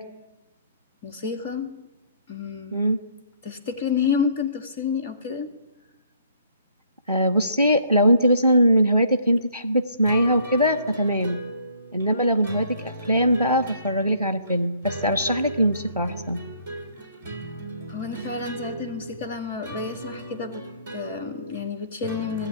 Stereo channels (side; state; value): both; inverted; correlation -0.62